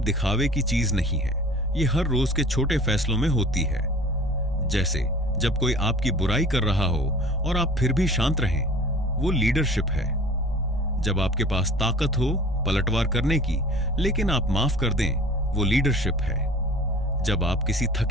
की चीज नहीं है, ये हर रोज के छोटे फैसलों में होती है। जैसे जब कोई आपकी बुराई कर रहा हो और आप फिर भी शांत रहें, वो लीडरशिप है। जब आपके पास ताकत हो पलटवार करने की, लेकिन आप माफ कर दें, वो लीडरशिप है। जब आप किसी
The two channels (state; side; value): normal; both; correlation 0.44